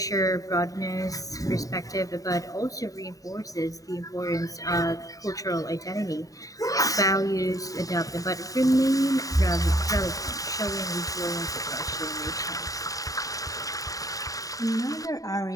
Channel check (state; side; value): late; right; 0.17 ms